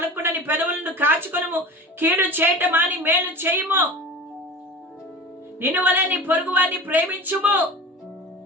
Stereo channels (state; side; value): normal; both; correlation 0.34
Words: నీ పెదవులను కాచుకొనుము. కీడు చేయటం మాని మేలు చేయుము. నిన్ను వలె నీ పొరుగు వారిని ప్రేమించుము.